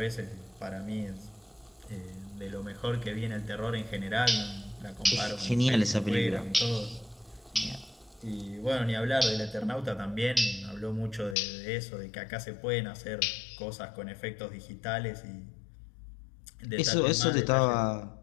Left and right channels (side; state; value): right; drops out; at 11.4 s